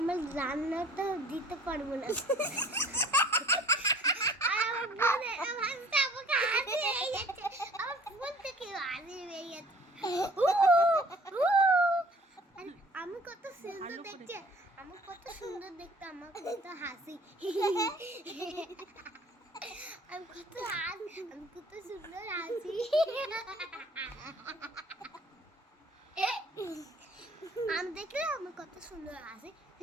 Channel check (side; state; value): both; normal; correlation 0.52